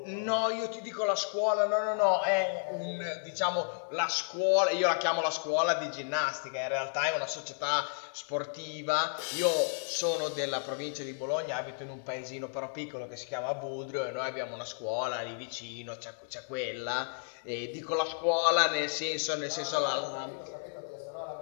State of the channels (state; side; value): silent; right; digital silence